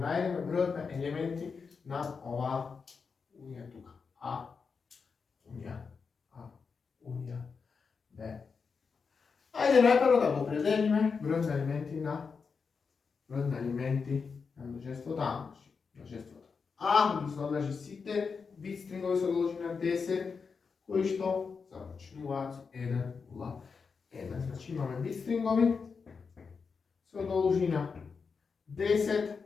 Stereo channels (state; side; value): quieter; right; 5.3 dB